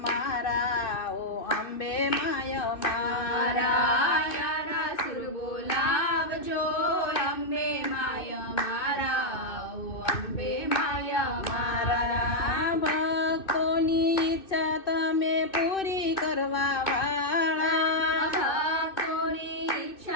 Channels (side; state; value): right; late; 2.6 ms